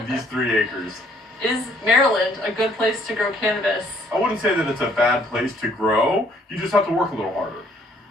these 3 acres. Is Maryland a good place to grow cannabis? I wouldn't say that it's a bad place to grow. You just have to work a little harder.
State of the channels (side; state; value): both; normal; correlation 0.63